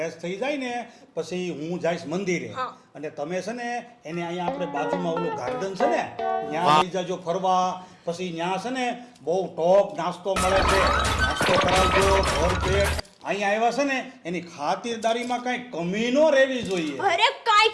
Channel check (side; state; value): both; identical; correlation 1.00